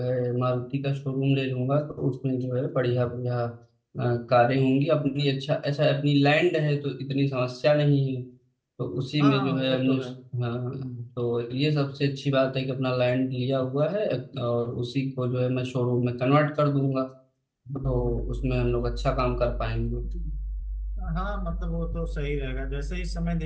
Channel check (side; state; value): both; identical; correlation 1.00